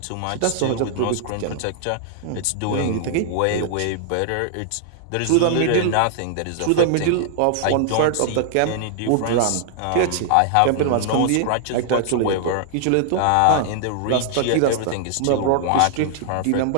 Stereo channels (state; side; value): different; both; correlation -0.01